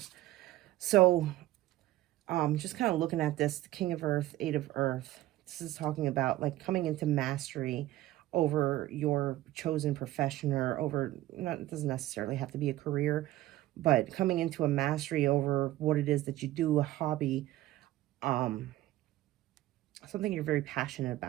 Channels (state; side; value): quieter; left; 15.6 dB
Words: So just kind of looking at this, the King of Earth, Eight of Earth. This is talking about like coming into mastery over your chosen profession, or over, it doesn't necessarily have to be a career, but coming into a mastery over what it is that you do, a hobby, something you're very passionate